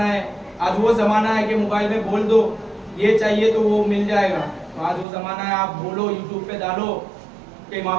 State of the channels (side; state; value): left; drops out; at 5.1 s